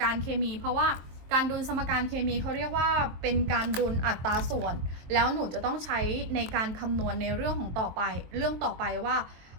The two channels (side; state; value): left; late; 23 ms